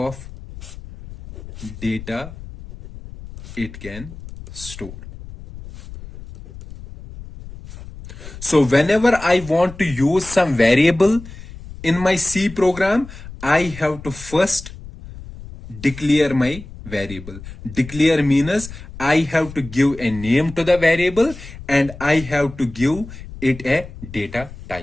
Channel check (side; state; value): left; noise; rumble, 14 dB below the sound